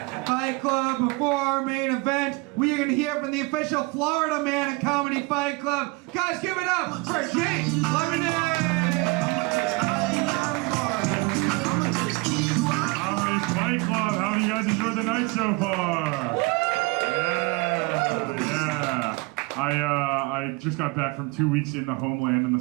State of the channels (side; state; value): left; quieter; 25.7 dB